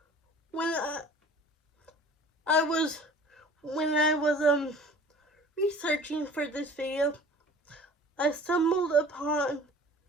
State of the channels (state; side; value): normal; both; correlation 0.45